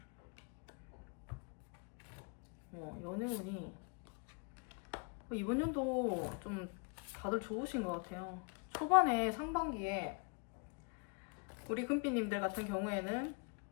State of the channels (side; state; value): right; quieter; 36.9 dB